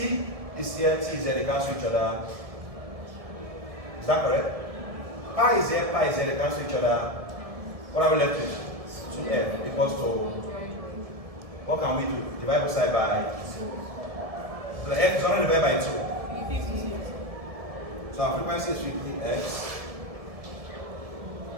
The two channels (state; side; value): late; left; 1.7 ms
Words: is here, T is here, they cancel each other. Is that correct? Pi is here, they cancel each other. What are we left with? 2f equals to, what can we do? Divide both sides by 2. The f is only divided by 2. So our frequency is 50x.